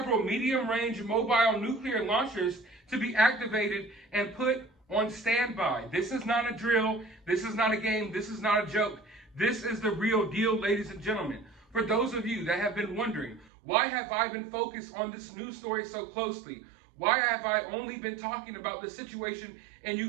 medium-range mobile nuclear launchers to be activated and put on standby. This is not a drill. This is not a game. This is not a joke. This is the real deal, ladies and gentlemen. For those of you that have been wondering, why have I been focused on this news story so closely? Why have I only been talking about the situation in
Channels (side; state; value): left; drops out; at 13.5 s